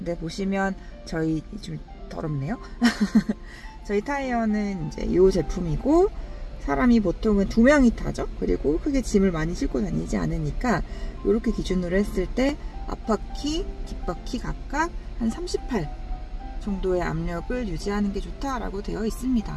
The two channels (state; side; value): identical; both; correlation 1.00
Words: 보시면 저희 좀 더럽네요. 저희 타이어는 이제 이 제품이고, 사람이 보통은 2명이 타죠. 그리고 크게 짐을 많이 싣고 다니지 않으니까 이렇게 기준으로 했을 때 앞바퀴, 뒷바퀴 각각 한 38 정도의 압력을 유지하는 게 좋다라고 되어 있습니다.